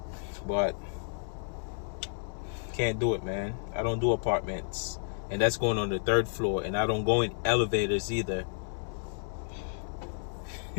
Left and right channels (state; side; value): silent; right; digital silence